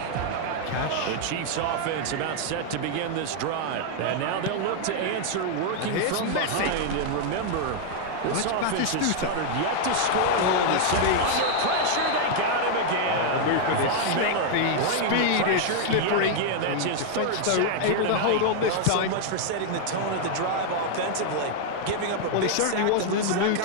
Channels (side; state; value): both; different; correlation 0.00